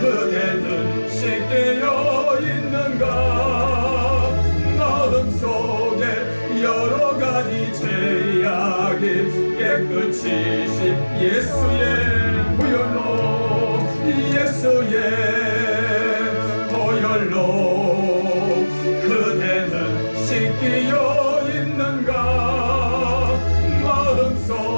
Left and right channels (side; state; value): both; inverted; correlation -1.00